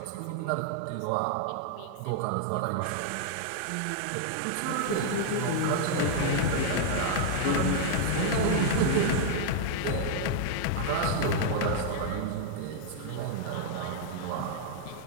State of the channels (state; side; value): different; both; correlation -0.01